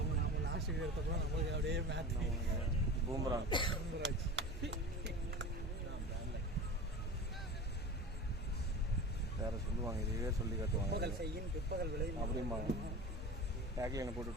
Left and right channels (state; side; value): normal; both; correlation 0.32